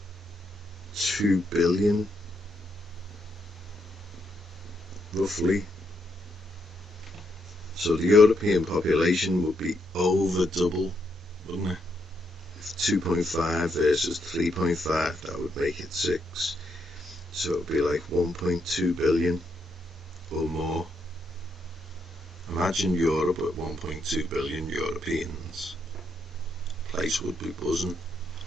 billion, roughly. So the European population would be over double, wouldn't it? 2.5 versus 3.5, that would make it 6. So it would be like 1.2 billion or more. Imagine Europe with 1.2 billion Europeans. The place would be buzzing.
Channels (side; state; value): both; normal; correlation 0.78